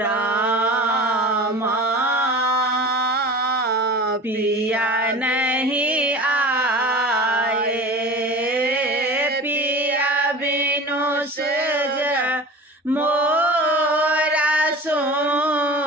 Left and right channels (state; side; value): normal; both; correlation 0.36